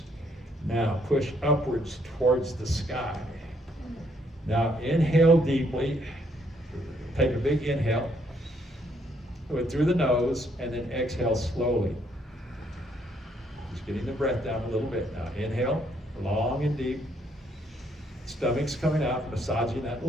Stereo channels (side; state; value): both; normal; correlation 0.70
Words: Now push upwards towards the sky. Now inhale deeply. Take a big inhale. Do it through the nose, and then exhale slowly. Just getting the breath down a little bit. Now inhale, long and deep. Stomach's coming out, massaging that